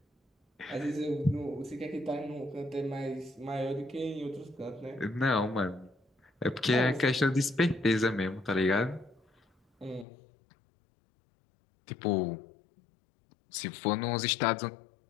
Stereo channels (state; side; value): drops out; right; at 10.1 s